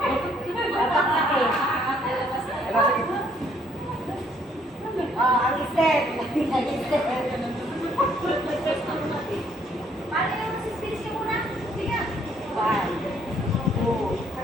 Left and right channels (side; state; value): both; normal; correlation 0.66